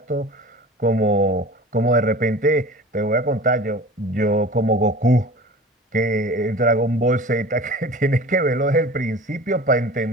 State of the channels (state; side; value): normal; both; correlation 0.39